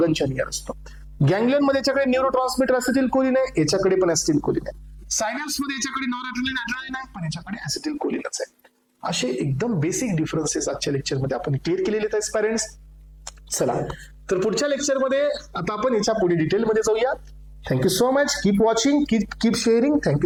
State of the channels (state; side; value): identical; both; correlation 1.00